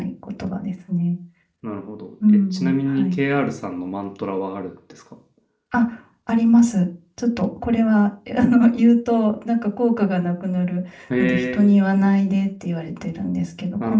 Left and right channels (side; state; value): both; identical; correlation 1.00